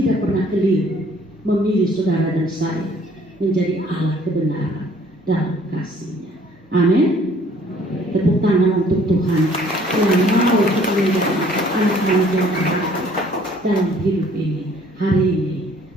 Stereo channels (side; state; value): both; normal; correlation 0.58